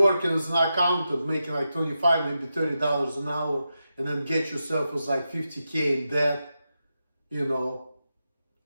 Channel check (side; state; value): both; inverted; correlation -0.89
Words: as an accountant, making like $25, maybe $30 an hour, and then get yourself as like 50K in debt, you know.